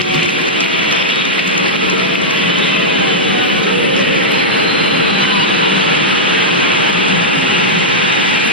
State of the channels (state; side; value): normal; both; correlation -0.07